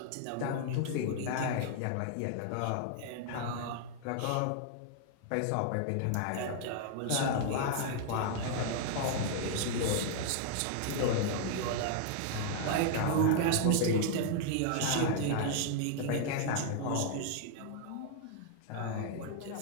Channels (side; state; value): both; different; correlation 0.00